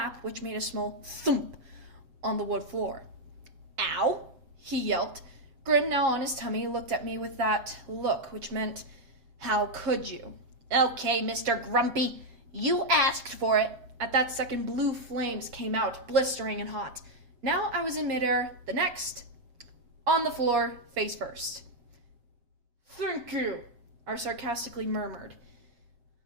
which made a small thump on the wood floor. Ow! He yelped. Grim, now on his tummy, looked at me with that look, which meant, how could you? Okay, Mr. Grumpy, you asked for it. At that second, blue flames came out, blistering and hot. Now I was in midair, the next, on the floor, face first. Thank you, I sarcastically murmured.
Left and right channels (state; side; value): late; left; 7.3 ms